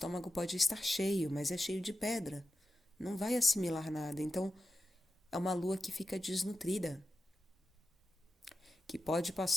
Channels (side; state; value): both; normal; correlation 0.92